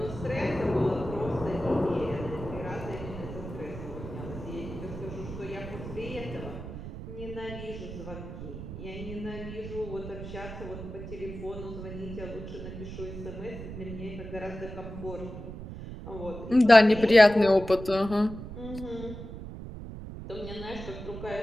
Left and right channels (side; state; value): right; noise; rumble, 10 dB below the sound